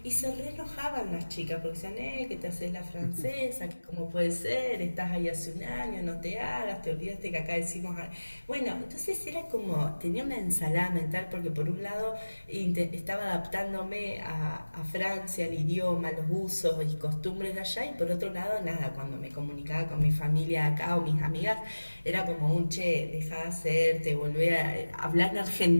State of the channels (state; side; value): inverted; both; correlation -1.00